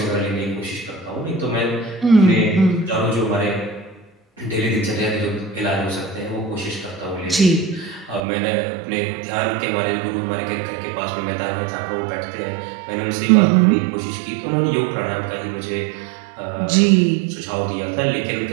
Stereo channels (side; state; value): left; drops out; at 8.2 s